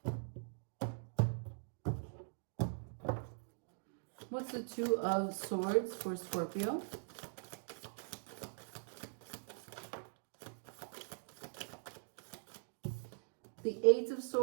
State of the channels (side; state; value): left; silent; digital silence